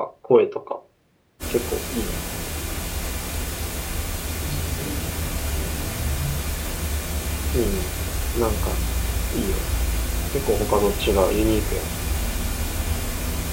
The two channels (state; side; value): identical; both; correlation 1.00